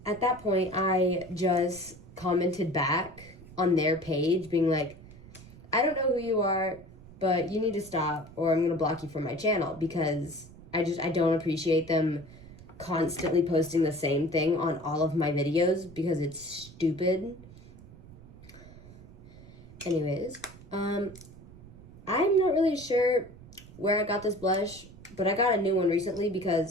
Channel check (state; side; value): noise; right; rumble, 19 dB below the sound